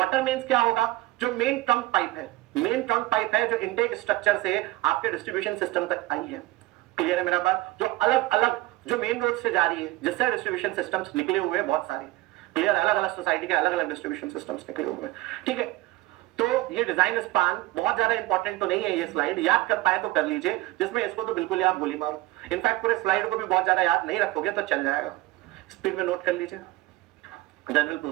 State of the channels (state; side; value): quieter; left; 18.4 dB